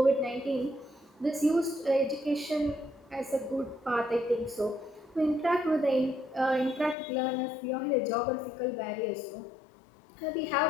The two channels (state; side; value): drops out; right; at 7.0 s